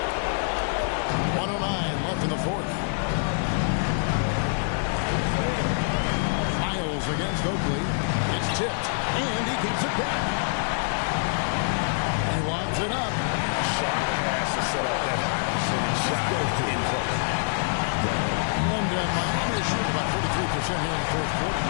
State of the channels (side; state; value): right; silent; 57 dB below the other